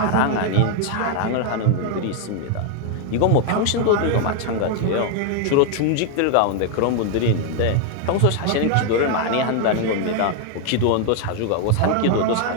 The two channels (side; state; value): both; different; correlation 0.01